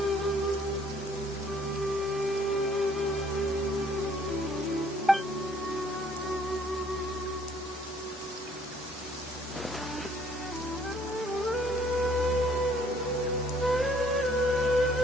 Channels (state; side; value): normal; both; correlation 0.62